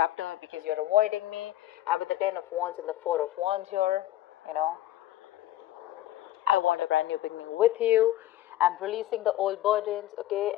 because you're avoiding me. I'm with the 10 of Wands and the 4 of Wands here, you know. I want a brand new beginning with you. I'm releasing the old burdens, okay?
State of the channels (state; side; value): quieter; right; 14.4 dB